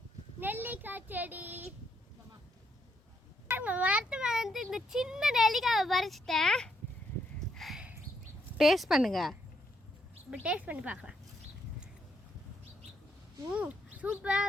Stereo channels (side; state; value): both; normal; correlation 0.76